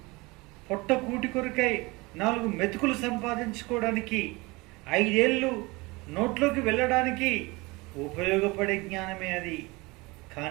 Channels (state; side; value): quieter; left; 24.1 dB